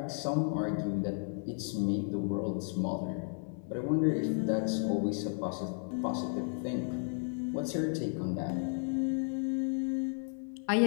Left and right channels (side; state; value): right; silent; 55 dB below the other